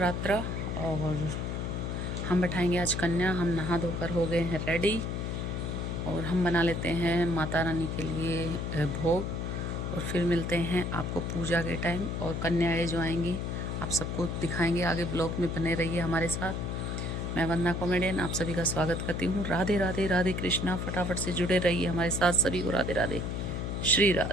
और हम बैठाएंगे आज कन्या। हम नहा धोकर हो गए हैं रेडी और हम बना लेते हैं माता रानी के लिए भोग और फिर मिलते हैं आपको पूजा के टाइम। और कन्याएँ जो आएंगी आप सबको दिखाएंगे। आगे ब्लॉग में बने रहिए हमारे साथ। मैं वंदना कॉमेडियन आप सभी का स्वागत करती हूँ। राधे राधे राधे कृष्णा। फटाफट से जुड़े रहिए हमारे साथ। सभी को राधे राधे, श्री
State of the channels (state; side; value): noise; left; hum, 2 dB below the sound